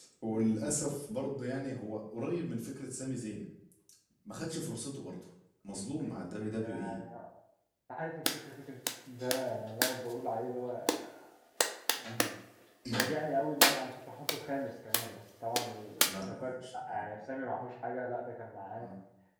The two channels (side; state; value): both; identical; correlation 1.00